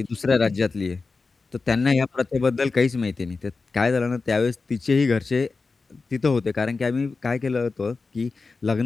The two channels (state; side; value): quieter; right; 4.1 dB